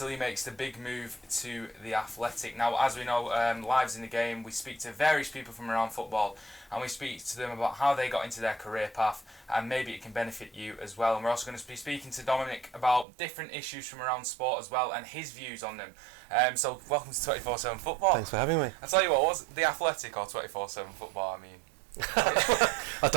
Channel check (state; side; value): drops out; left; at 13.1 s